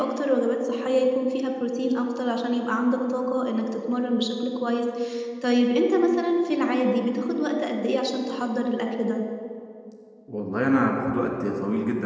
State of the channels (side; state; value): both; identical; correlation 1.00